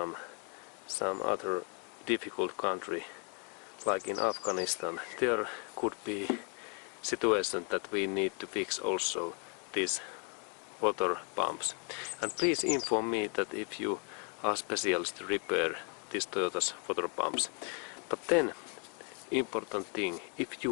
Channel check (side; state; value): right; quieter; 37.7 dB